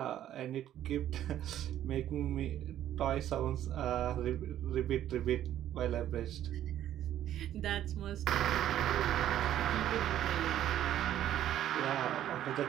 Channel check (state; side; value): quieter; left; 11.8 dB